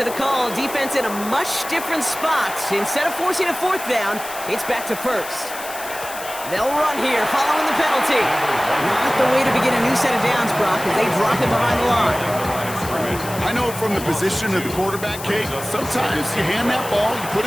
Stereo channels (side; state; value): left; noise; hiss, 11 dB below the sound